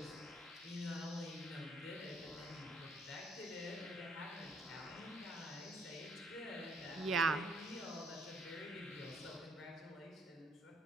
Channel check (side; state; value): both; normal; correlation 0.65